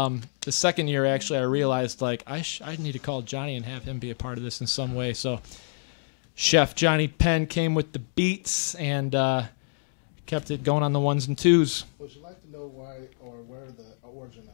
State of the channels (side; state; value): right; silent; digital silence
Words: the second year actually, I realized like I need to call Johnny and have him be a part of this in some way. So Chef Johnny Penn came with the beats and kept it going on the ones and twos. Would you like to know why or where the origin